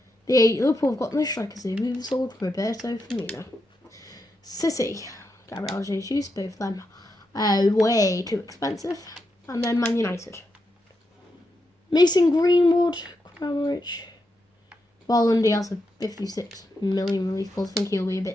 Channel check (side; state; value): both; normal; correlation 0.84